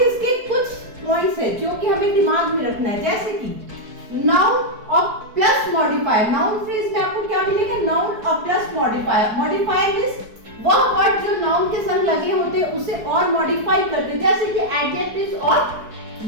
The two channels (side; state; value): left; late; 4.7 ms